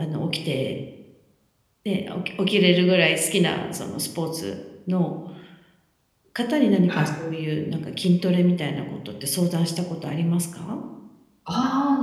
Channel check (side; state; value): both; identical; correlation 1.00